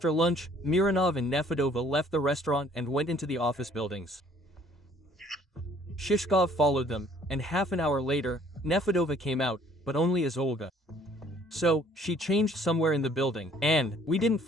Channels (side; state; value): both; normal; correlation 0.59